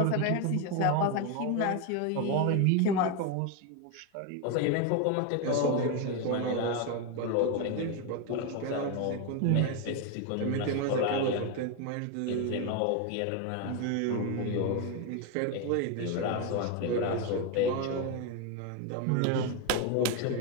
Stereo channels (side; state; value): both; different; correlation 0.02